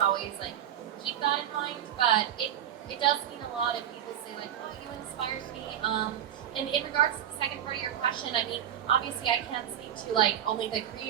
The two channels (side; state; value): left; quieter; 10.5 dB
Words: always like keep that in mind. But it does mean a lot if people say like, oh, you inspired me. And in regards to the second part of your question, I mean, obviously I can't speak to like only the